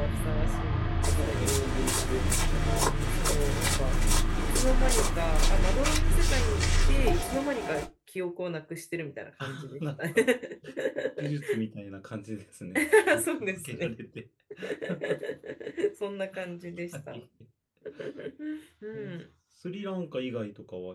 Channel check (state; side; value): identical; both; correlation 1.00